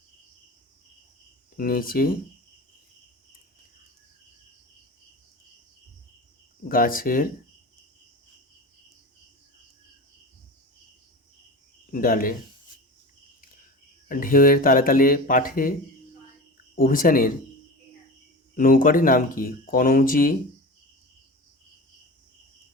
নিচে, গাছের ডালে। ঢেউয়ের তালে তালে পাঠে অভিযানের নৌকাটির নাম কি? কনৌজি,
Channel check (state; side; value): normal; both; correlation 0.31